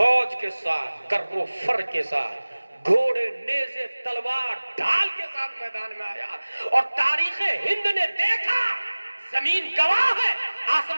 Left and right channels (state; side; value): inverted; both; correlation -1.00